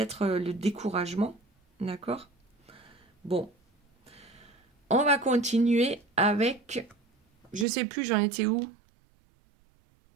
le découragement, d'accord. Bon, on va continuer avec, je sais plus, j'en étais où?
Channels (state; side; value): drops out; left; at 7.7 s